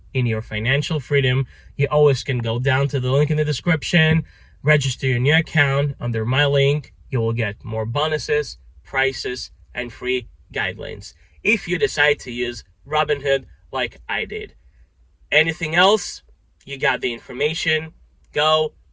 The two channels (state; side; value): identical; both; correlation 1.00